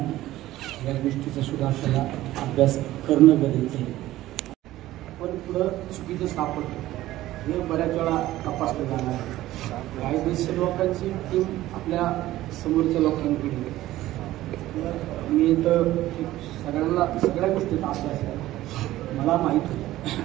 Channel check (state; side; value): quieter; left; 15.5 dB